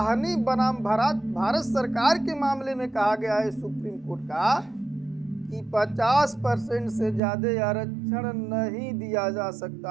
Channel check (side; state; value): left; drops out; at 7.2 s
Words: बनाम भारत सरकार के मामले में कहा गया है सुप्रीम कोर्ट का कि 50% से ज्यादा आरक्षण नहीं दिया जा